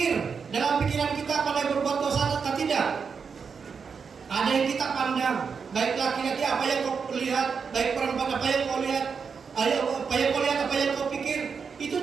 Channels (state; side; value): quieter; left; 5.9 dB